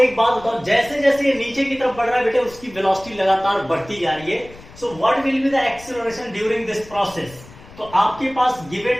बात बताओ, जैसे जैसे ये नीचे की तरफ बढ़ रहा है बेटे उसकी वेलोसिटी लगातार बढ़ती जा रही है। So what will be the acceleration during this process? तो आपके पास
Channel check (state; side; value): noise; left; rumble, 20 dB below the sound